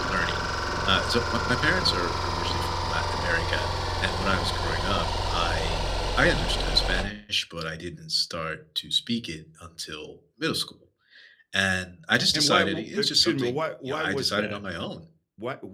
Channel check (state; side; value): identical; both; correlation 1.00